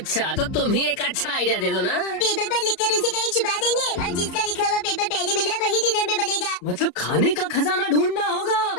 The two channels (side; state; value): right; late; 34 ms